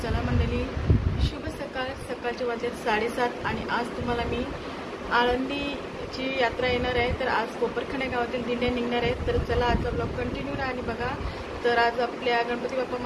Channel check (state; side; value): identical; both; correlation 1.00